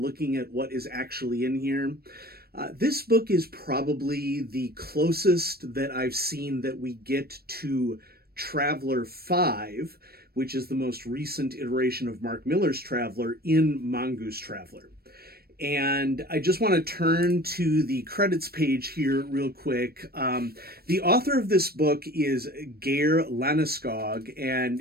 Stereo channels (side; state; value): left; late; 0.45 ms